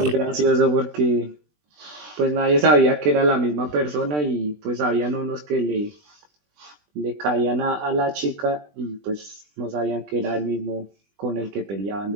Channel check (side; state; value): left; late; 20 ms